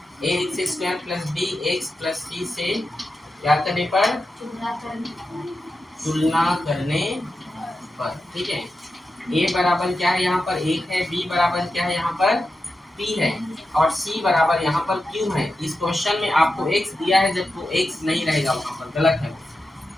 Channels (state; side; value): normal; both; correlation 0.90